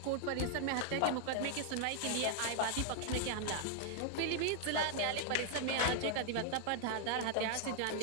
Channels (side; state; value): both; different; correlation 0.00